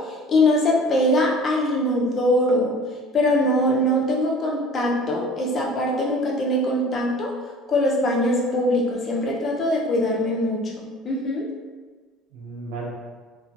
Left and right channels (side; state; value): both; normal; correlation 0.45